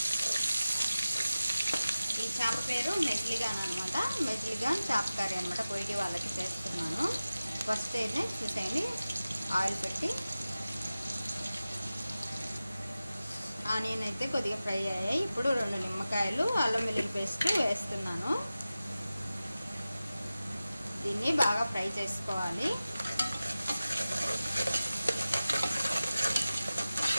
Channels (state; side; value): inverted; both; correlation -0.95